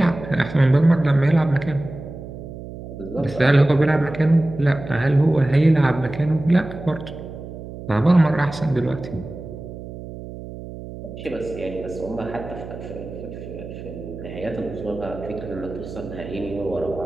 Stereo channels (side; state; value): right; noise; hum, 12 dB below the sound